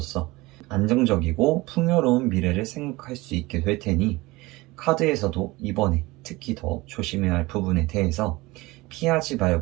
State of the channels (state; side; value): quieter; left; 21.3 dB